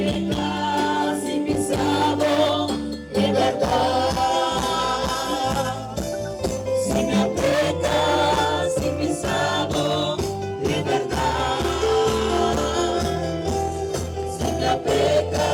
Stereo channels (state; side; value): identical; both; correlation 1.00